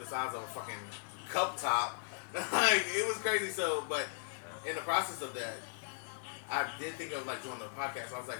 the size of a fucking cup top. Like it was crazy. So, but in the process of that, I did think of like doing the podcast. I was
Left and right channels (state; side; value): silent; right; 53 dB below the other